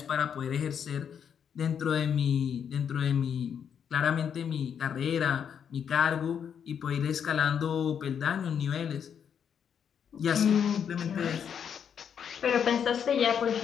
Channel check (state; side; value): quieter; right; 7.9 dB